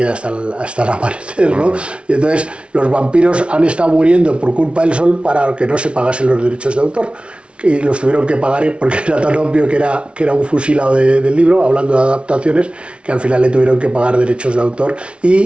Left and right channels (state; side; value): late; left; 0.059 ms